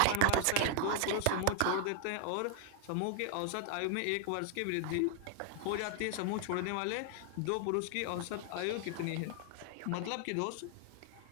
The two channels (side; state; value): both; different; correlation 0.00